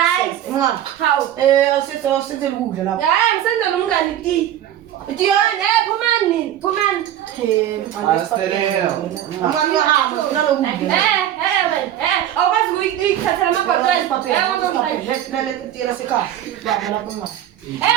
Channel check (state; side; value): quieter; left; 11.4 dB